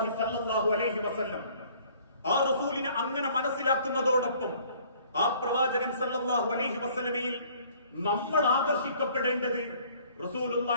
സല്ലല്ലാഹു അലൈഹി വസല്ലം. ആ റസൂലിനെ അങ്ങനെ മനസ്സിലാക്കുന്നതോടൊപ്പം ആ പ്രവാചകൻ സല്ലല്ലാഹു അലൈഹി വസല്ലമയിൽ നമ്മൾ ആകർഷിക്കപ്പെടേണ്ടത്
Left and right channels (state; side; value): inverted; both; correlation -0.57